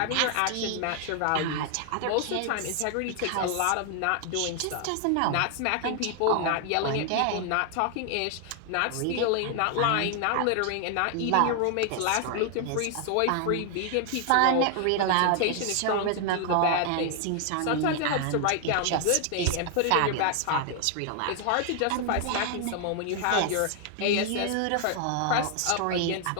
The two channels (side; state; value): both; different; correlation 0.00